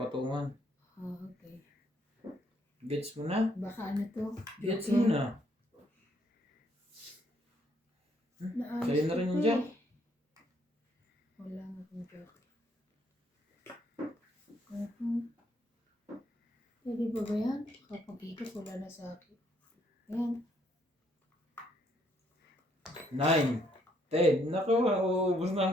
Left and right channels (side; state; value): both; normal; correlation 0.70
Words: Ah, okay. Gets mo na? Baka ano to? Gets mo na? Naayos Sa'yo na rin ko yung eh. jack. Wala nga akong jockey. Pwede ba ba yan? Kapag ikot, wala na sa akin. Ayan. 9, 10. Naku, uubos na